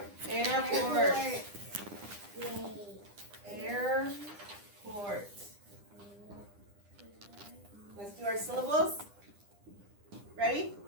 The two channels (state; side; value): late; left; 9.9 ms